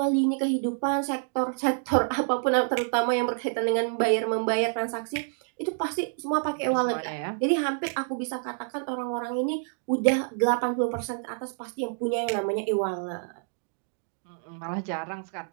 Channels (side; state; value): left; silent; 60 dB below the other